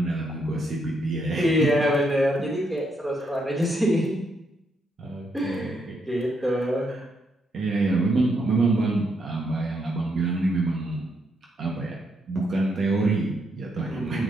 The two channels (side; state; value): both; normal; correlation 0.77